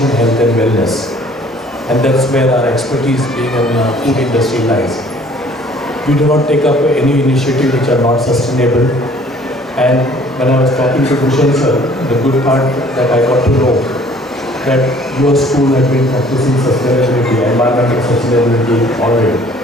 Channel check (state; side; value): normal; both; correlation 0.55